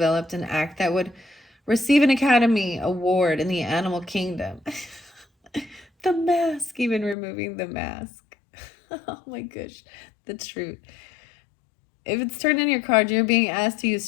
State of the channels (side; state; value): right; drops out; at 7.2 s